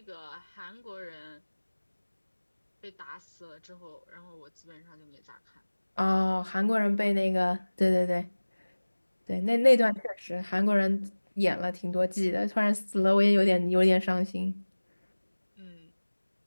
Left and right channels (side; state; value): both; inverted; correlation -1.00